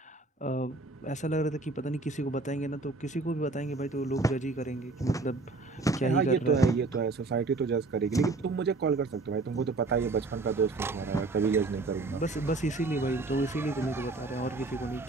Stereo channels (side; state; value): left; quieter; 3.4 dB